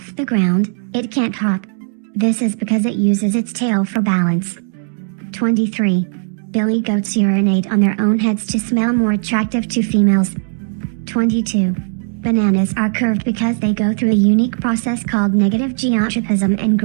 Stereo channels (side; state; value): left; silent; 68 dB below the other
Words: the ground, it can't hop. This is because it uses its tail for balance. 23. Billy goats urinate on their own heads to smell more attractive to females. 22. Bananas are curved because they go through a unique process called negative geotropism and